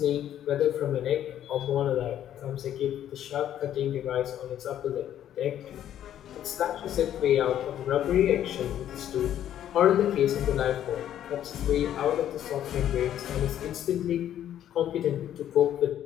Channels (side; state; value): right; quieter; 11.0 dB